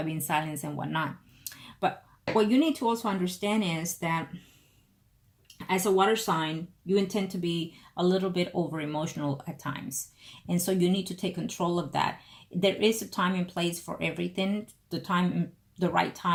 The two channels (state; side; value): identical; both; correlation 1.00